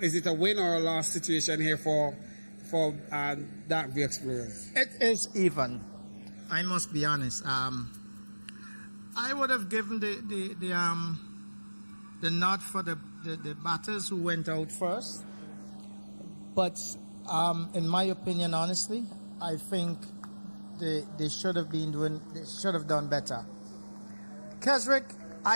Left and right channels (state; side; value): inverted; both; correlation -1.00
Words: Is it a win or a loss situation here for Dark View Explorers? It is even. I must be honest. I would have given the nod for the batters who went out first. But in my opinion, honestly, I think they should have done better. Keswick,